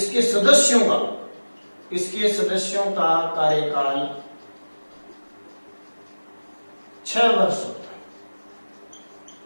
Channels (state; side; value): inverted; both; correlation -1.00